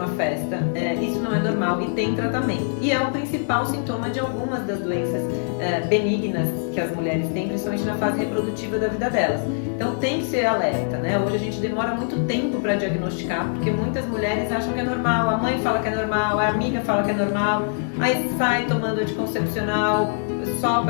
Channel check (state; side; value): silent; right; 63 dB below the other